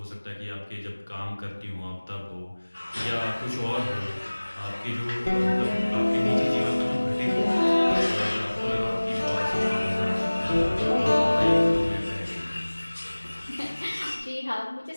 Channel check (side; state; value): both; inverted; correlation -1.00